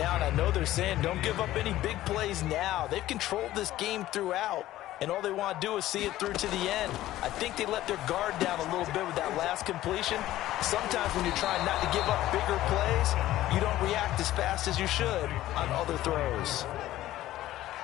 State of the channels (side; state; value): right; quieter; 14.8 dB